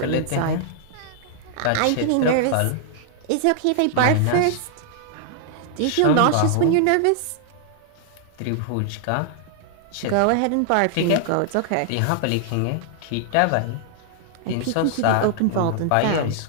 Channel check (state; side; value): different; both; correlation -0.01